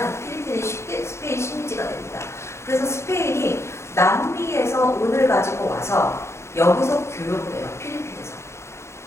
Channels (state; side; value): late; right; 0.13 ms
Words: 필리핀이 스페인 식민지가 됩니다. 그래서 스페인이 남미에서 은을 가지고 와서 여기서 교역을 해요. 필리핀에서.